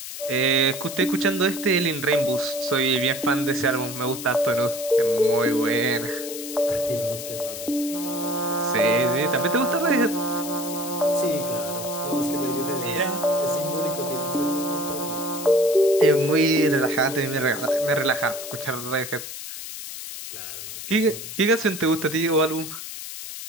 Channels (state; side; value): noise; left; hiss, 9 dB below the sound